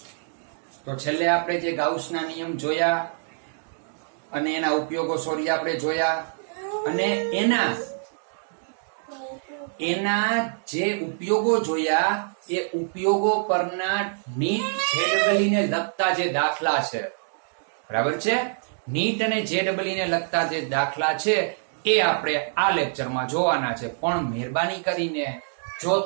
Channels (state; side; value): silent; left; digital silence